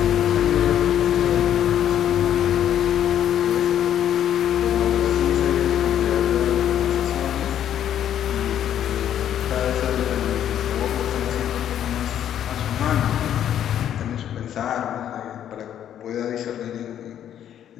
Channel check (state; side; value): quieter; right; 10.3 dB